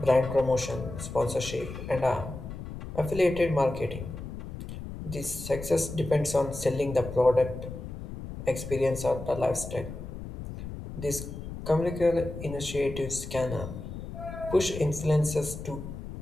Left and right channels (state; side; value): noise; left; rumble, 10 dB below the sound